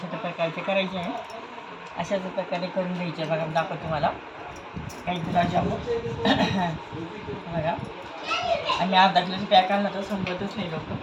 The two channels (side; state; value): both; identical; correlation 1.00